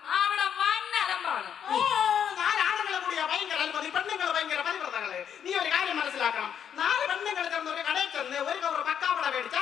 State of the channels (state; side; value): quieter; right; 8.5 dB